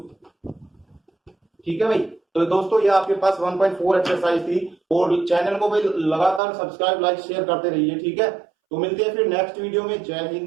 ठीक है भाई। तो दोस्तों ये आपके पास 1.4 एक्सरसाइज थी, और चैनल को भाई लगातार सब्सक्राइब लाइक शेयर करते रहिए, ठीक है। तो मिलते हैं फिर नेक्स्ट वीडियो में। जय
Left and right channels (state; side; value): drops out; left; at 6.4 s